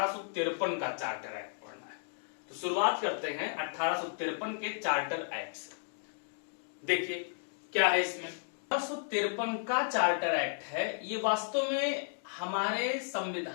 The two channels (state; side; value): silent; right; digital silence